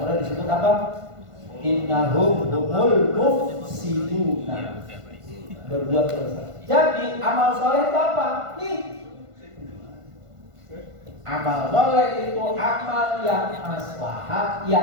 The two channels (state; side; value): late; left; 1.5 ms